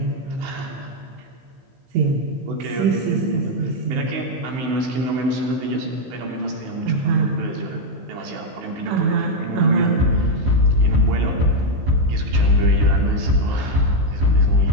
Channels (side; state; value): left; late; 15 ms